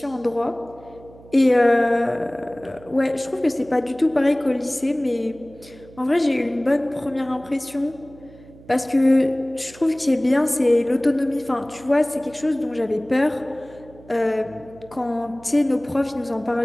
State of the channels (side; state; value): right; noise; hum, 22 dB below the sound